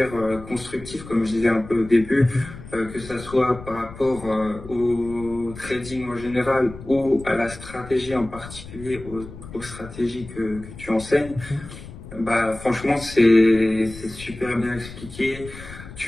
constructives, comme je disais un peu au début, que ça soit par rapport au trading en général ou à la stratégie en particulier, aux stratégies que tu enseignes. Bah franchement c'est super bien expliqué.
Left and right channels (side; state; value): left; noise; rumble, 15 dB below the sound